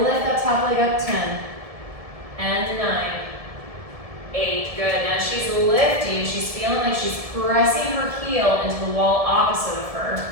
lift that top leg up. 10 and 9, 8, good. Now she's lifting, she's feeling like she's pressing her heel into the wall opposite of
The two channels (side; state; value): left; late; 1.7 ms